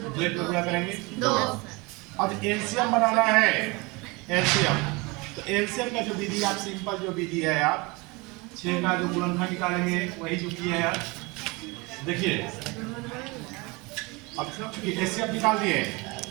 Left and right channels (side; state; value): left; quieter; 26.0 dB